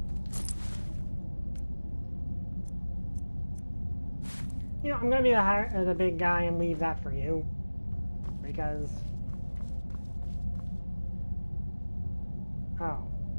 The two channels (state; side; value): inverted; both; correlation -1.00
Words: You know, I'm gonna be the big guy and leave that for you, because... Oh.